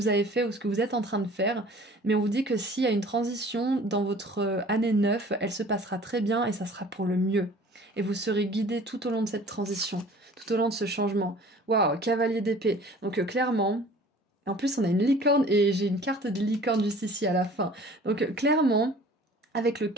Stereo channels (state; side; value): normal; both; correlation 0.48